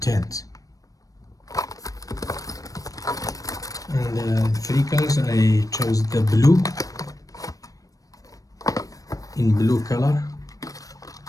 And 3 colors, I chose the blue, in blue color,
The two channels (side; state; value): right; late; 0.17 ms